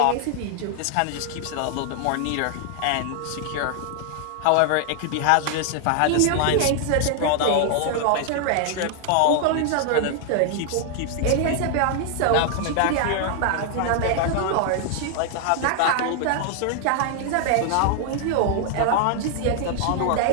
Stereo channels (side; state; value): both; different; correlation 0.00